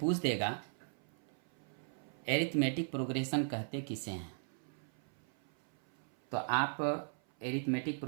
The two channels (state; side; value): silent; left; 52 dB below the other